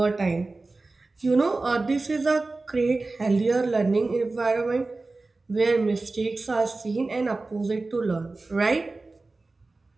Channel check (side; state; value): left; quieter; 3.4 dB